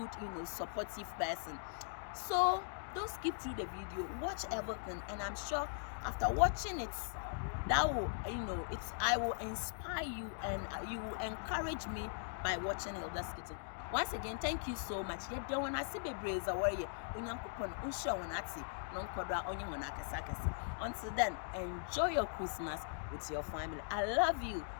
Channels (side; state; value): right; silent; digital silence